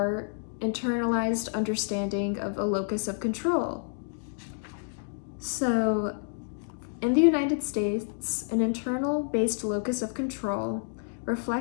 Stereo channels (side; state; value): right; silent; digital silence